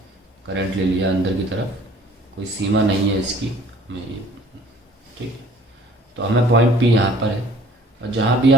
करंट ले लिया अंदर की तरफ. कोई सीमा नहीं है इसकी हमें ये. ठीक है, तो हमें पॉइंट पी यहाँ पर है और जहाँ भी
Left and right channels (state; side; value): normal; both; correlation 0.53